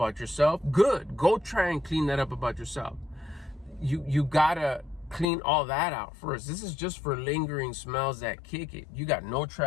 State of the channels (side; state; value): right; drops out; at 5.2 s